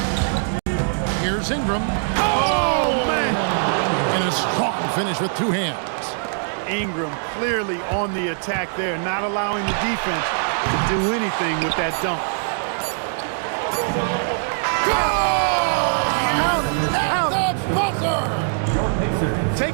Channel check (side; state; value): left; silent; digital silence